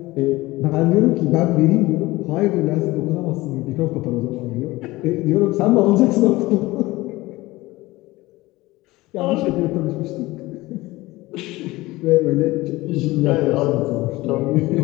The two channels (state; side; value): quieter; right; 19.6 dB